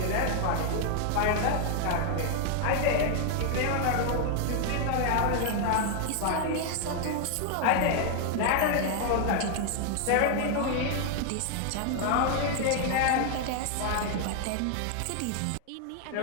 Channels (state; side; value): different; both; correlation 0.00